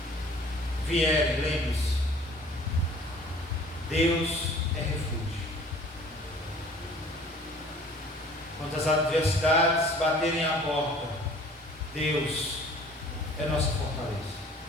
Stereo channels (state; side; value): normal; both; correlation 0.50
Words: vierem, lembre-se, Deus é refúgio. Quando as adversidades baterem à porta, Deus é nossa fortaleza.